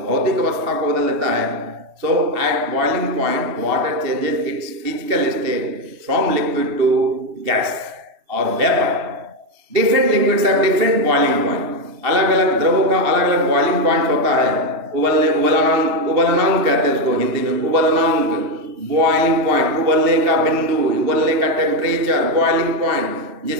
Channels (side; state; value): left; late; 2.7 ms